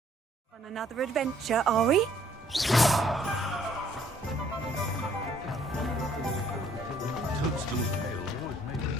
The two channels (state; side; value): normal; both; correlation 0.63